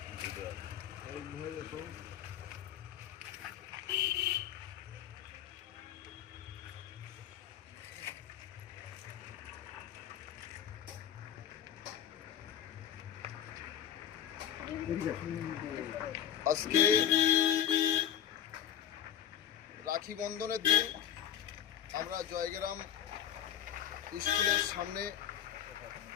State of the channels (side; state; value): right; quieter; 10.0 dB